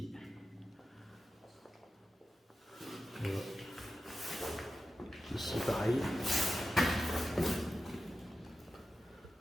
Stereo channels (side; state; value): both; normal; correlation 0.92